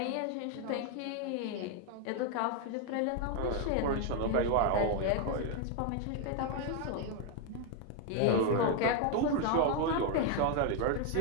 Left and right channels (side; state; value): both; different; correlation 0.01